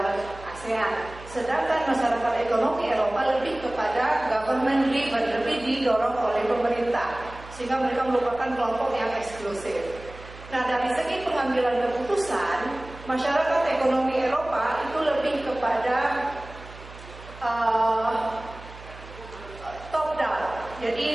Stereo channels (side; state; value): right; noise; hum, 17 dB below the sound